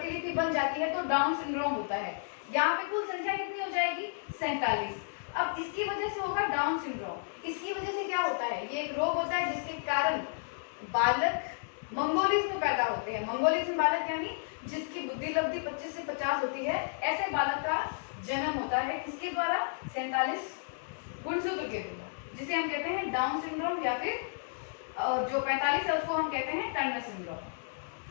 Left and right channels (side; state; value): right; silent; digital silence